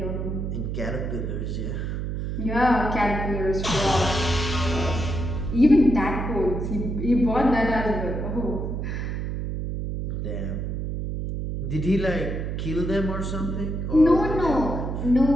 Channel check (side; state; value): right; noise; hum, 3 dB below the sound